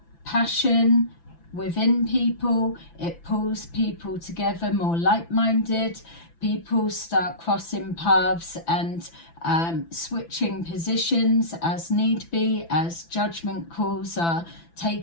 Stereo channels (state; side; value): late; right; 5.9 ms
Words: passion within people. It pulls people together, more like-minded. People start crossing paths and switching positions as need be, as judgment calls are